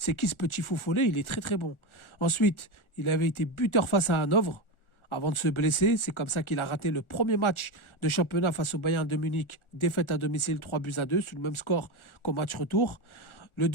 qui ce petit fou follet? Il est très très bon. Ensuite, il avait été buteur face à Hanovre avant de se blesser. C'est comme ça qu'il a raté le premier match de championnat face au Bayern de Munich, défaite à domicile 3-2 sur le même score qu'au match retour. Le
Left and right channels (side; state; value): right; late; 1.4 ms